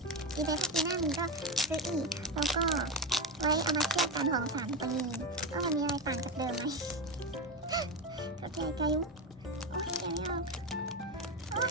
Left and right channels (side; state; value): both; normal; correlation 0.16